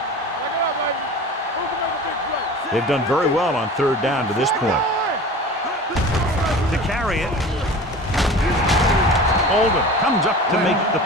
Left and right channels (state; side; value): normal; both; correlation 0.37